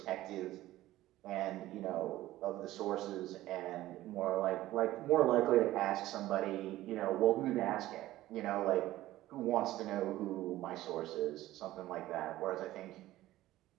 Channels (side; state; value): left; quieter; 15.6 dB